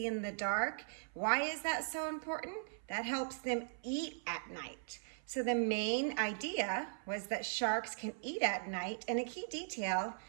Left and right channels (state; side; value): silent; left; 52 dB below the other